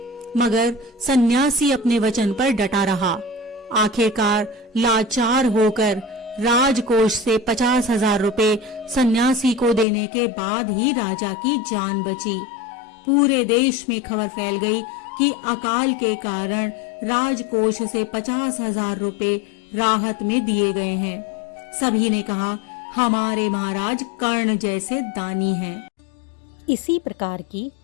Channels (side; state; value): right; drops out; at 9.9 s